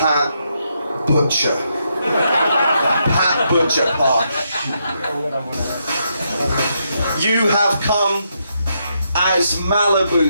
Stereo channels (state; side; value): inverted; both; correlation -0.79